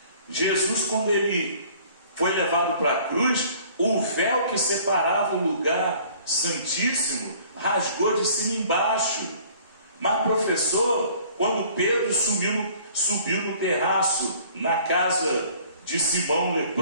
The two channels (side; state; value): both; inverted; correlation -0.53